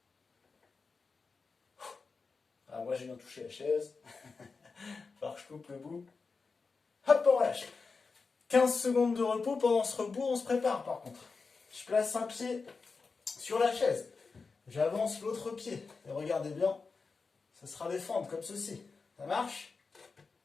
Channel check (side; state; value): right; quieter; 4.5 dB